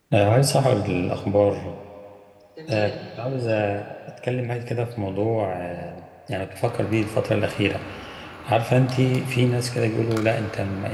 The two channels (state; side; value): identical; both; correlation 1.00